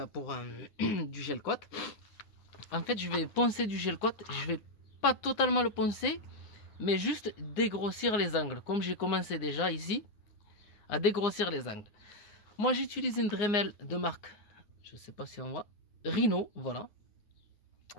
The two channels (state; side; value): late; right; 9.4 ms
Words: pour du gel coat. En fait, je vais poncer du gel coat. Je vais pas totalement le poncer, mais juste dégrossir les angles. Comme j'ai commencé déjà ici à dégrossir les angles. Moi, j'utilise une Dremel de marque, je sais pas si on voit, Rhino, voilà,